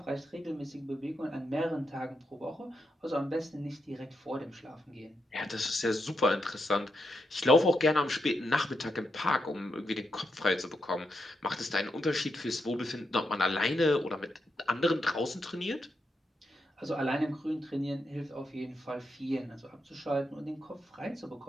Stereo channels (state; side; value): normal; both; correlation 0.84